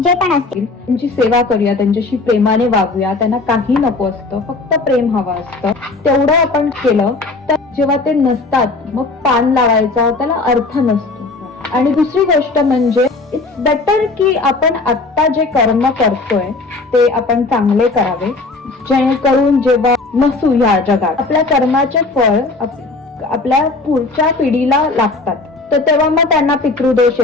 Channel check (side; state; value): right; quieter; 3.5 dB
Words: पण असतील, त्यांची सेवा करूया, त्यांच्याशी प्रेमाने वागूया. त्यांना काही नको असतं, फक्त प्रेम हवं असतं. तेवढं आपण केलं तर जेव्हा ते नसतात मग पान लावायचा त्याला अर्थ नसतो. आणि दुसरी गोष्ट म्हणजे इट्स बेटर की आपण आत्ता जे कर्म करतोय ते आपण चांगले करावे, जेणेकरून जेव्हा नसू या जगात आपल्या कर्माचे फळ आपल्या पुढच्या पिढीला लागतात, तर तेव्हा मग त्यांना पितृदोष